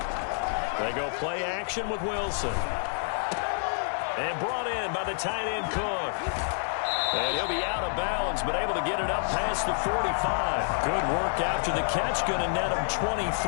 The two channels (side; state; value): right; silent; digital silence